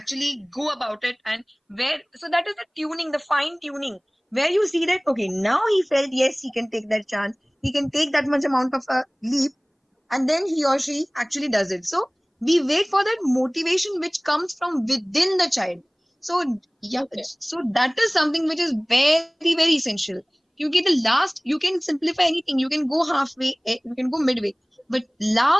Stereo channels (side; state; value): both; identical; correlation 1.00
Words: go about it, and where so that is the tuning, the fine tuning, where you see that okay, now he felt yes, he can take that chance, he can take that much amount of a leap, and then he or she actually does it. So we wait for that motivation which comes from within the child. So yeah, Okay. so that is something which is very very essential. You get the last, you can simplify anything, you can go halfway, you can go midway, but